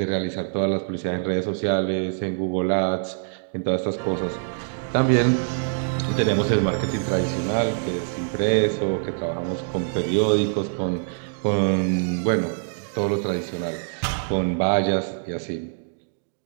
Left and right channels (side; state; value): left; silent; digital silence